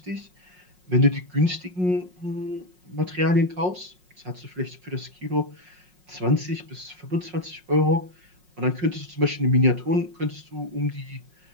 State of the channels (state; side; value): late; left; 5.5 ms